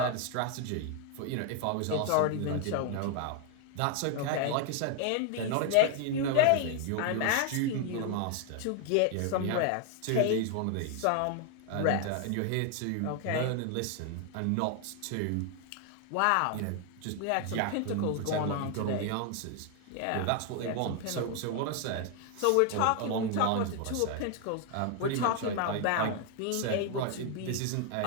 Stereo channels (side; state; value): both; different; correlation 0.00